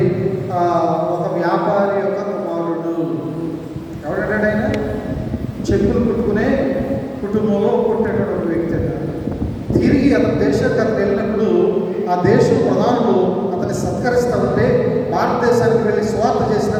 ఒక వ్యాపారి యొక్క కుమారుడు. ఎవడంటే ఆయన చెప్పులు కుట్టుకునే కుటుంబంలో పుట్టేటటువంటి వ్యక్తి. తిరిగి అతని దేశానికి అతను వెళ్ళినప్పుడు ఆ దేశ ప్రధానులు అతన్ని సత్కరిస్తూ ఉంటే, భారతదేశానికి వెళ్ళి స్వార్థ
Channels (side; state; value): both; identical; correlation 1.00